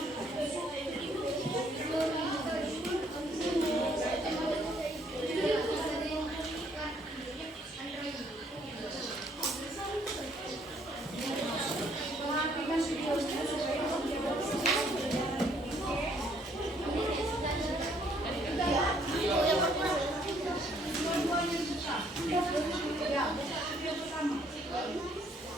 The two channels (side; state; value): both; normal; correlation 0.66